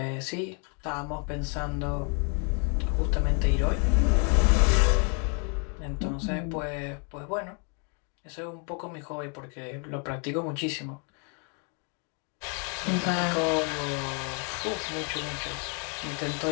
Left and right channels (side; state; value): right; quieter; 37.7 dB